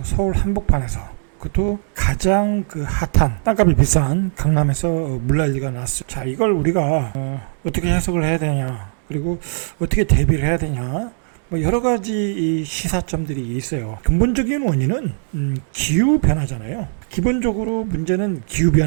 서울 한복판에서, 그것도 가장 핫한 땅값이 비싼 강남에서 물난리가 났어요. 자, 이걸 우리가 어떻게 해석을 해야 되냐, 그리고 어떻게 대비를 해야 되냐, 뭐 여러 가지 이 시사점들이 있어요. 근본적인 원인은 기후 변화잖아요. 기본적으로 문제는 기후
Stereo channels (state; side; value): silent; left; digital silence